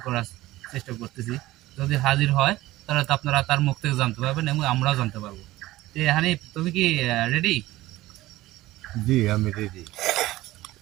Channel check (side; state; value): left; quieter; 17.2 dB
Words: করার চেষ্টা করতেছি। যদি হাজির হয় তাহলে তো আপনারা তার মুখ থেকে জানতে পারবেন এবং আমরাও জানতে পারবো। হানিফ, তুমি কি রেডি? জি, আমি রেডি।